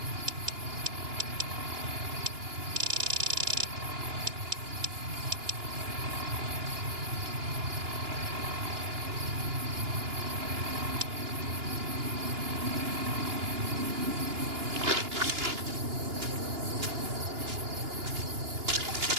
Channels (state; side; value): late; left; 2.9 ms